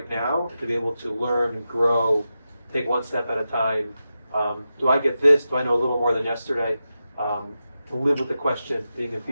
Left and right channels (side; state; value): both; inverted; correlation -0.91